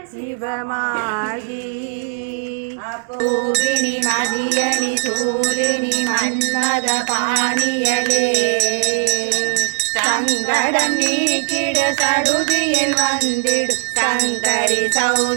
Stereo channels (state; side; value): silent; left; digital silence